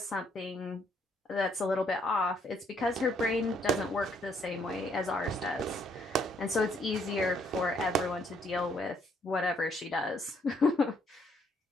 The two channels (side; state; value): both; normal; correlation 0.69